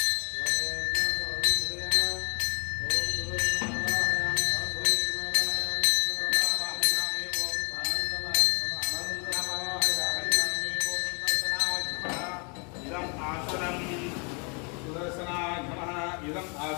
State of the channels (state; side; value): quieter; right; 35.1 dB